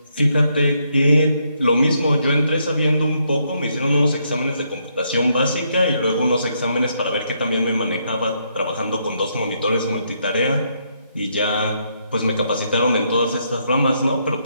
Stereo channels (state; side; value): inverted; both; correlation -0.76